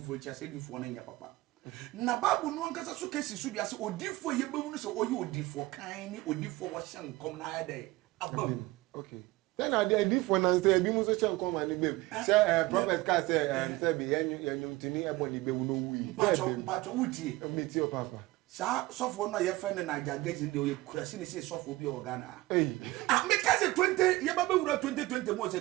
chi ase difo na nya papa na Bible no ankasa so kesi so dia se odifo ye bewu no se oyi odifo kan ni odifo wo shan kom na ya dai abam. Okay. Then I did for nan say bi mu so chen come and be. Say prophet ka say be yenyum tini eboni be wu no wi. Pacho wuti. Meet your papa. Sa sofo no ye friend na jagage de o kurasi ni say sofo bi o Ghana. Eh. Me ka say 20 ye ba wura 2020 mo say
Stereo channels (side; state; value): left; quieter; 19.8 dB